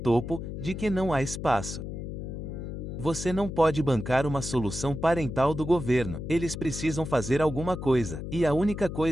de que não há espaço. Você não pode bancar uma solução parental do governo. Eles precisam fazer alguma coisa. E a única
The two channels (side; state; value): left; noise; hum, 7 dB below the sound